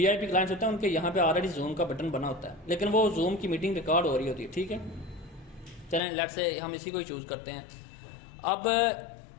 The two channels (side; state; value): right; drops out; at 6.0 s